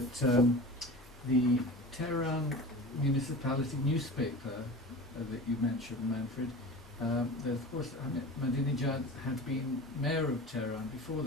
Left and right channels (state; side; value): normal; both; correlation 0.34